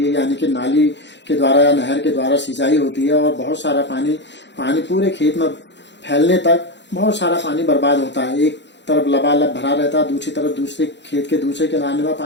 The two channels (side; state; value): right; late; 0.52 ms